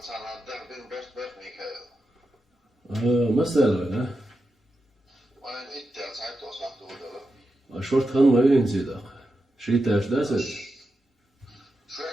مثلا شورت خان ما ينزل شيء تاش داسس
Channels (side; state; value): both; normal; correlation 0.89